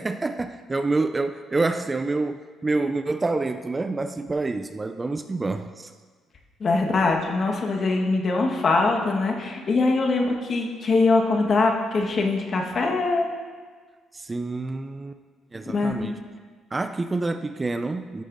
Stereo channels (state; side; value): normal; both; correlation 0.86